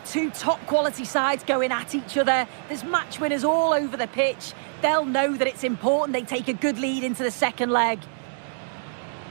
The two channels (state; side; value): silent; left; digital silence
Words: Two top-quality sides going at each other. There's match winners all over the pitch. They'll know that it's important they take a good lead into the second leg.